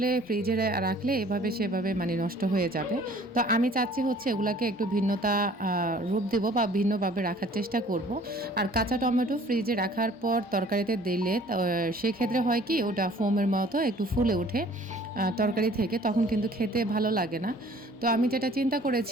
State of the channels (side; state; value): both; normal; correlation 0.53